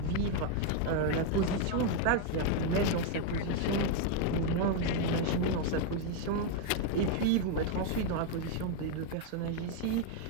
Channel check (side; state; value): both; different; correlation 0.01